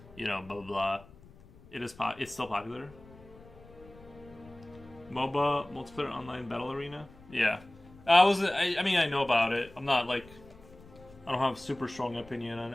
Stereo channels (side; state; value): left; noise; rumble, 22 dB below the sound